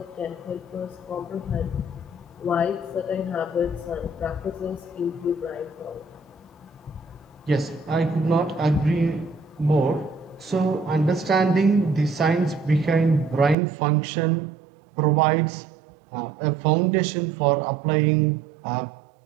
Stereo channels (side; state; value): left; drops out; at 13.6 s